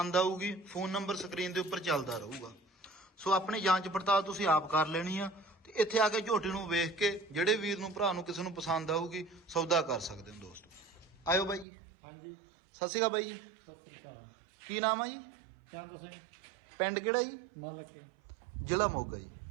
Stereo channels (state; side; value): drops out; left; at 11.7 s